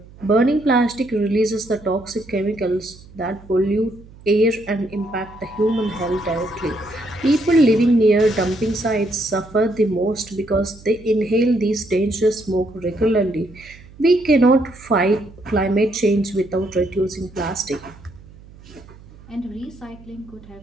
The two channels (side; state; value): right; noise; hum, 21 dB below the sound